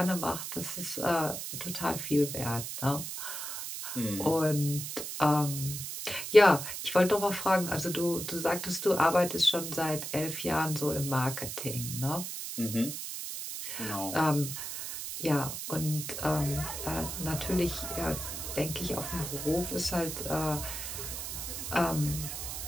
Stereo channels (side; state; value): right; noise; hiss, 6 dB below the sound